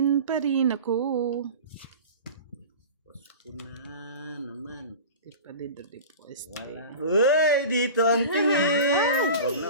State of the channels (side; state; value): both; inverted; correlation -0.34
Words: pa rin ako. Tapos ko na naman. Di pa din dati po. Wala. Uy! Dito ang tingin!